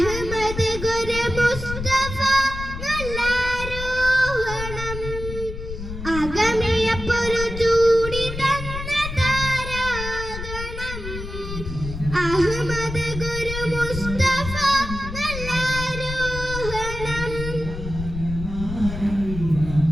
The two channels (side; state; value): left; noise; rumble, 8 dB below the sound